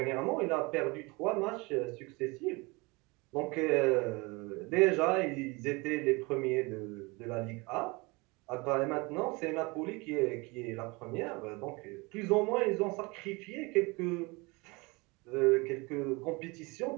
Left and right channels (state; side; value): quieter; left; 26.1 dB